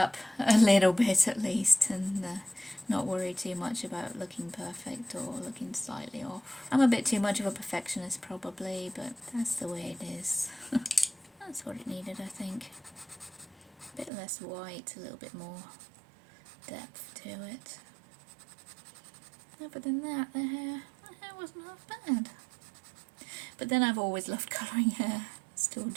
a little bit at least, and not worry too much about looking perfect or looking slightly off. I'm a bit too much of a perfectionist probably, but that's the way it is. That's what it needed, I think. A bit less white, a little bit more depth to it. Other than that, the hair wasn't half bad. But then I've always loved colouring hair, still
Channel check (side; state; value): left; drops out; at 14.1 s